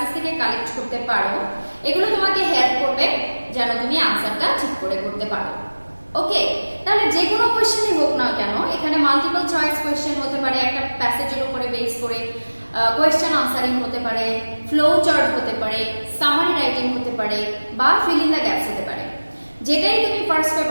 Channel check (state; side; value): inverted; both; correlation -1.00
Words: থেকে কালেক্ট করতে পারো, এগুলো তোমাকে হেল্প করবে যেন তুমি আনসারটা ঠিক করে করতে পারো। ওকে, তাহলে যে কোনো কোয়েশ্চেনই হোক না কেন, এখানে মাল্টিপল চয়েস কোয়েশ্চেন হতে পারে, একটা প্যাসেজের উপরে বেস করে কোয়েশ্চেন আনসারিং হতে পারে, ফ্লো চার্ট হতে পারে, সামারি রাইটিং হতে পারে বা ফিল ইন দ্য গ্যাপস হতে পারে। যেটাই তুমি ফার্স্ট